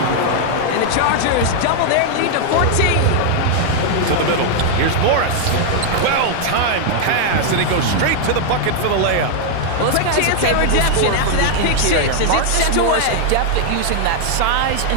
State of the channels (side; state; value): both; different; correlation 0.00